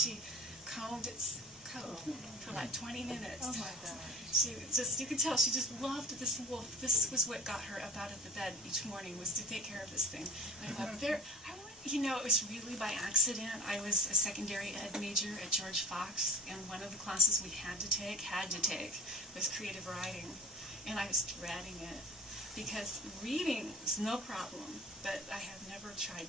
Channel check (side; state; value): both; normal; correlation 0.39